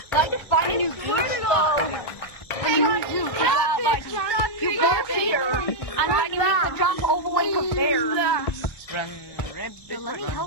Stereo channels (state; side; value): late; right; 1.6 ms